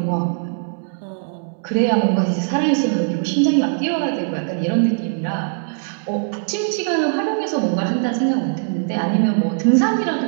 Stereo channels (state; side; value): silent; left; digital silence